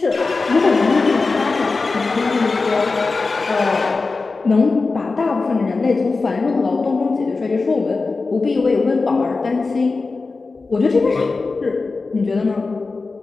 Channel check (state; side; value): quieter; right; 3.9 dB